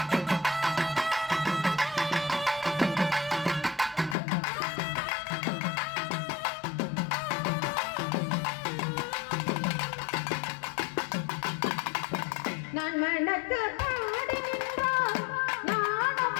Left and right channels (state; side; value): drops out; right; at 4.2 s